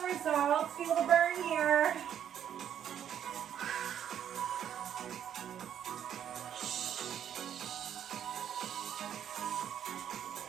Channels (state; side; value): quieter; left; 9.6 dB